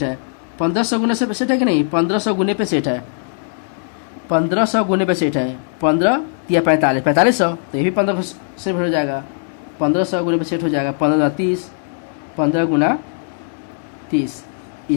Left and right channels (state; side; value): silent; right; digital silence